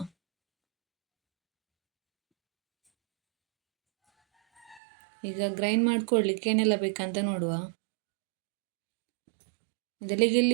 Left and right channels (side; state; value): left; drops out; at 4.8 s